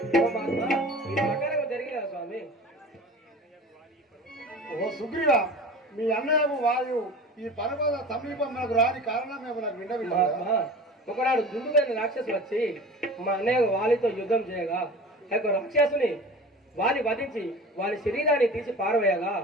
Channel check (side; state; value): both; normal; correlation 0.37